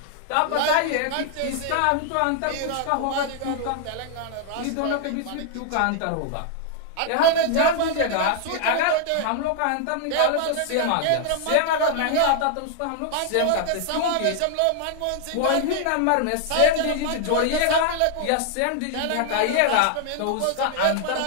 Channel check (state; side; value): different; both; correlation 0.00